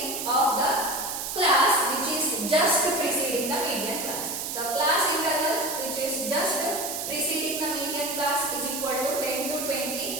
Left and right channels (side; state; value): right; noise; hiss, 4 dB below the sound